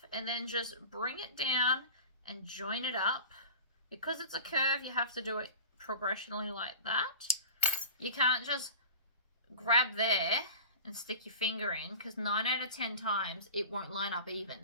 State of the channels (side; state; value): both; inverted; correlation -0.34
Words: and then just bring it down and join it up. Because it's a curve, you have to do it progressionally like that. You can't just grab there and stick your finger in, because 9 out of 10 times it won't line up